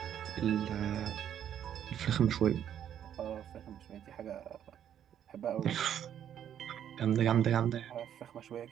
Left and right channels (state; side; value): quieter; left; 9.8 dB